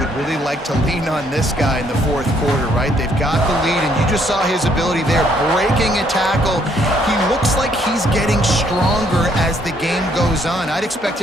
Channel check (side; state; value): both; normal; correlation 0.68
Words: really like to lean on this guy in the fourth quarter, right? They've got the lead, and you just saw his ability there, breaking a tackle. He looks like he's getting stronger as the game goes on. I'd expect